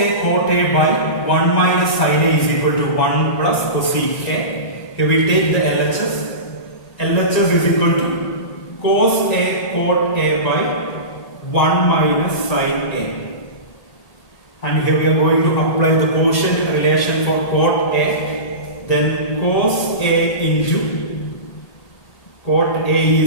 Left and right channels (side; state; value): right; late; 1.8 ms